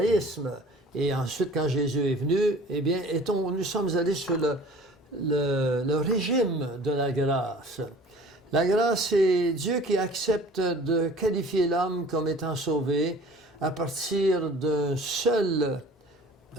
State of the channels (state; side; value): normal; both; correlation 0.47